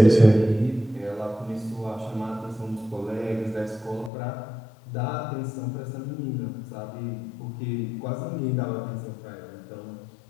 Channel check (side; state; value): right; drops out; at 4.1 s